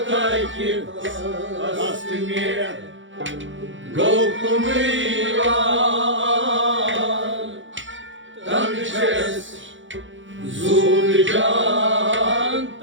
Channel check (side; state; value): left; late; 0.56 ms